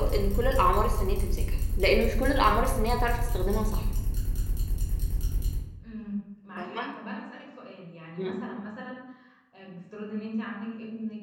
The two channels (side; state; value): both; identical; correlation 1.00